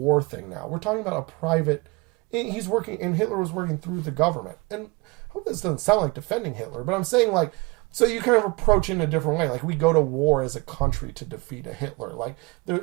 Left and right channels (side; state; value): left; quieter; 26.6 dB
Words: thing now. We're talking about a private. He's working, and Hitler was working through the government. And I hope this doesn't sound like defending Hitler, but I'm saying, like, so you kind of approach it in a different way. Like, we go to war as a country to defeat a Hitler. Like,